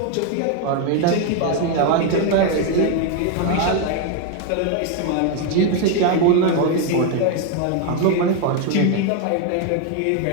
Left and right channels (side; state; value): both; different; correlation 0.01